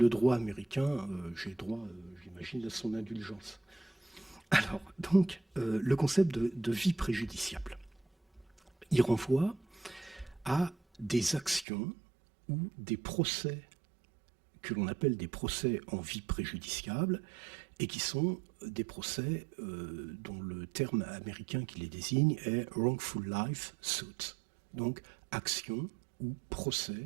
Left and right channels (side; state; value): left; drops out; at 11.7 s